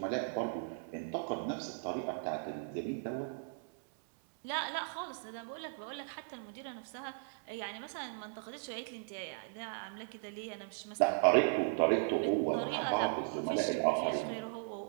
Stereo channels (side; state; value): left; silent; 53 dB below the other